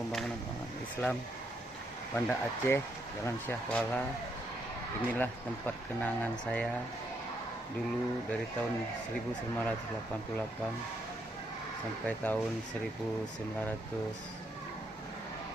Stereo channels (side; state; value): both; normal; correlation 0.76